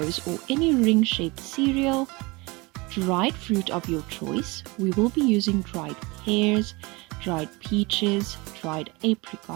or any ring-shaped cereal, dried fruit of your choice. We will be using dried pears, dried peaches, dried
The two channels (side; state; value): left; quieter; 25.2 dB